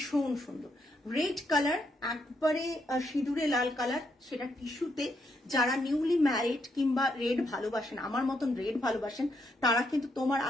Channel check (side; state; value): both; normal; correlation 0.78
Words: সুন্দর। রেড কালার একবারে সিঁদুরে লাল কালার, সেটা টিস্যুতে। যারা নিউলি ম্যারিড কিংবা রেড ভালোবাসেন, আমার মতন রেড ভালোবাসেন, তারা কিন্তু তোমার